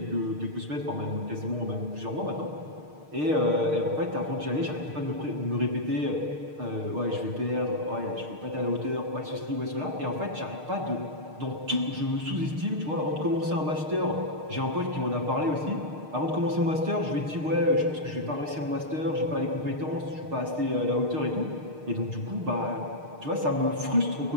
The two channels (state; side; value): late; left; 6.6 ms